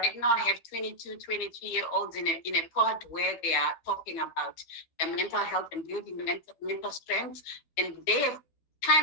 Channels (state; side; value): late; right; 12 ms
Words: now I have 22, 23-year-olds in a pod where they are talking about their mental health and building mental strength. And they've